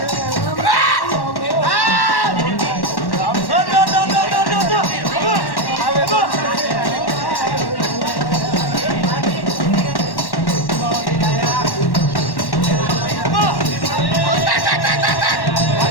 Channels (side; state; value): right; late; 1.1 ms